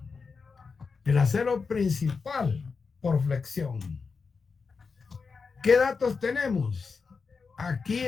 principal por flexión. ¿Qué datos tenemos? Aquí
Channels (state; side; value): quieter; right; 5.0 dB